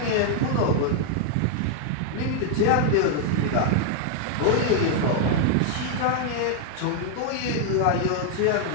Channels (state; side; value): different; both; correlation 0.00